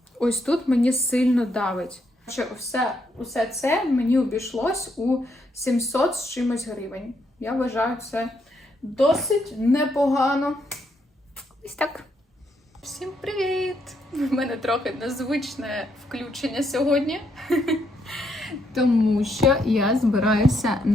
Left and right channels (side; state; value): both; normal; correlation 0.76